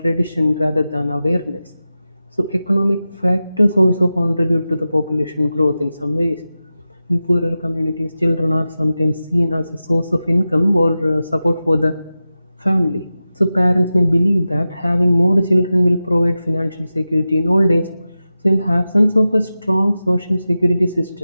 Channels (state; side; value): inverted; both; correlation -0.93